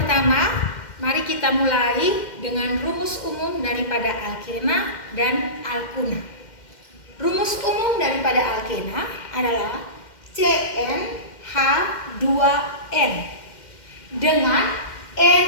mari kita mulai dengan rumus umum daripada alkena dan alkuna. Rumus umum daripada alkena adalah CnH2n dengan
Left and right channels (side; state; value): right; late; 2.1 ms